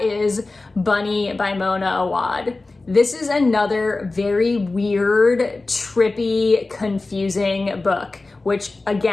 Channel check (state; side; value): quieter; right; 3.4 dB